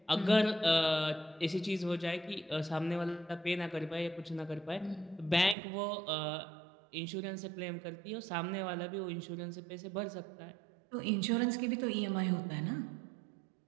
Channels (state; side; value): drops out; left; at 5.6 s